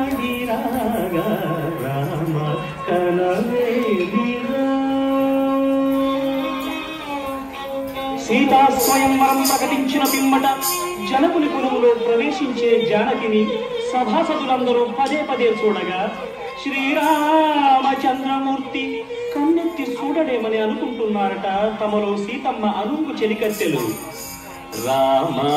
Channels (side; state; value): both; identical; correlation 1.00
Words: రాగా రామ కనవే మీరా సీతా స్వయంవరం ప్రకటించిన పిమ్మట జనకుని కులములో ప్రవేశించే జానకిని సభాసదులందరూ పదే పదే చూడగా శ్రీరామచంద్రమూర్తి కన్నెత్తి చూడలేమని అనుకుంటున్నారట తమలో సీతమ్మ అనుంగు చెలికత్తెలు. రామ